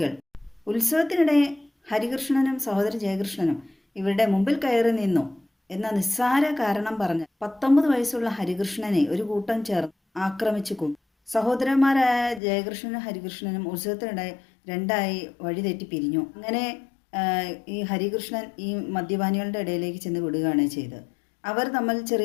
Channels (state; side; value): drops out; right; at 12.4 s